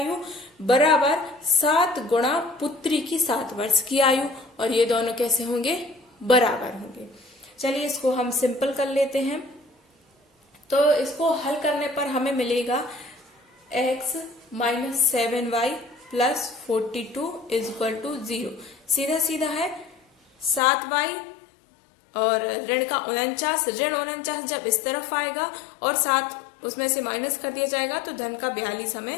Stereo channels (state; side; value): drops out; right; at 20.6 s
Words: बराबर 7 गुणा पुत्री की 7 वर्ष की आयु, और ये दोनों कैसे होंगे, बराबर होंगे। चलिए इसको हम सिंपल कर लेते हैं। तो इसको हल करने पर हमें मिलेगा x - 7y + 42 = 0। सीधा सीधा है 7y और ऋण का 49, ऋण 49 जब इस तरफ आएगा और 7 उसमें से माइनस कर दिया जाएगा तो धन का 42